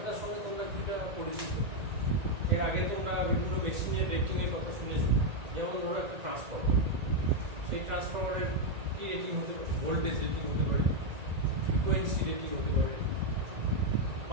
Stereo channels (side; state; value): left; late; 1.8 ms